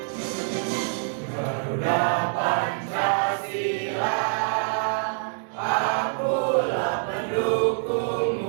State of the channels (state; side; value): silent; left; 61 dB below the other